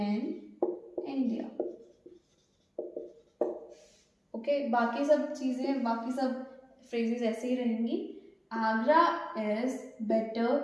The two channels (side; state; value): both; identical; correlation 1.00